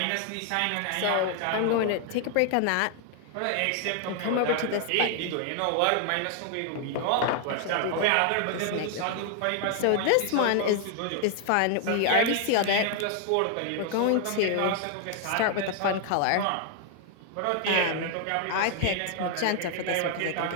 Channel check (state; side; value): different; both; correlation 0.00